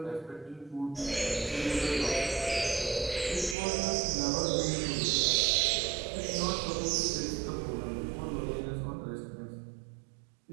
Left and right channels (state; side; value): drops out; left; at 3.6 s